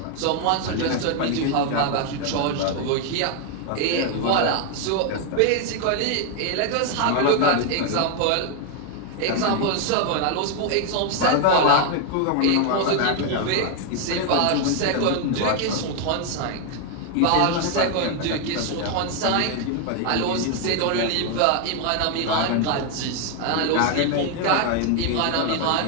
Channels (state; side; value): different; both; correlation 0.01